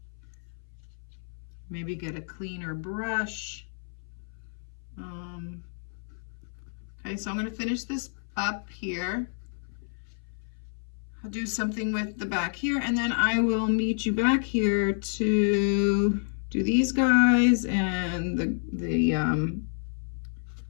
Maybe get a cleaner brush. Okay, so I'm gonna finish this up here. I'll do something with the back here, and then I will meet you back here to do these guys and the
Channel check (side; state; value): right; silent; 57 dB below the other